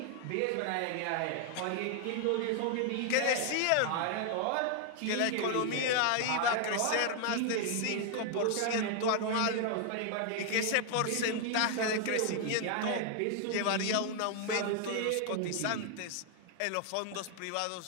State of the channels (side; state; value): both; different; correlation 0.00